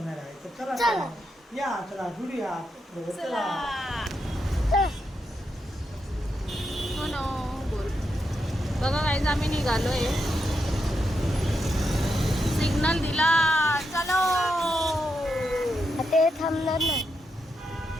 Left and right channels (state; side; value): normal; both; correlation 0.83